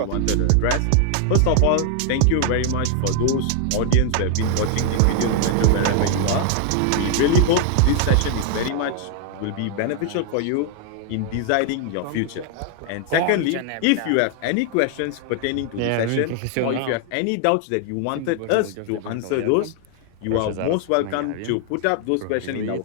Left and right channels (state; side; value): different; both; correlation 0.00